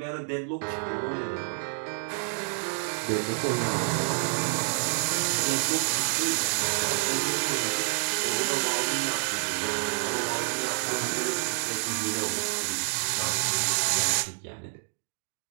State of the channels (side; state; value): left; silent; digital silence